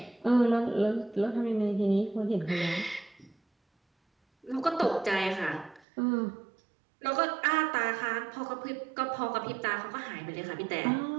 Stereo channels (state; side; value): drops out; left; at 5.8 s